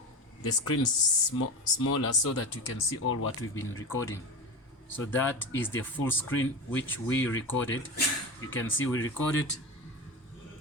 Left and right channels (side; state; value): both; normal; correlation 0.23